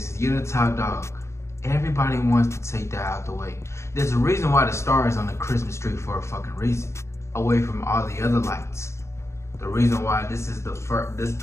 is. You're the top dog. Everybody wants to take that out the way. There's a reason why the star is on the Christmas tree, for a fucking reason, away from all the other lights. The reason why this is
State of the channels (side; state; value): right; late; 0.13 ms